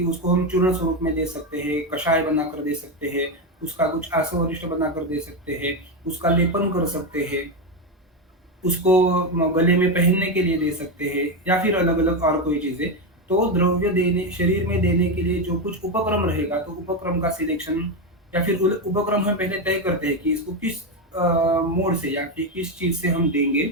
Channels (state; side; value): normal; both; correlation 0.10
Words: उसको हम चूर्ण स्वरूप में दे सकते हैं, कषाय बनाकर दे सकते हैं, उसका कुछ आसवरिष्ठ बनाकर दे सकते हैं, उसका लेपन कर सकते हैं। उसको गले में पहनने के लिए दे सकते हैं या फिर अलग-अलग और कोई चीज़ें। तो द्रव्य देने शरीर में देने के लिए जो कुछ उपक्रम रहेगा, तो उपक्रम का सिलेक्शन या फिर उल उपक्रम हम पहले तय करते हैं कि इसको किस मोड से या फिर किस चीज़ से हम देंगे